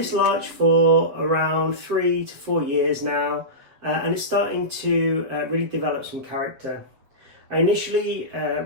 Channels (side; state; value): left; late; 7.8 ms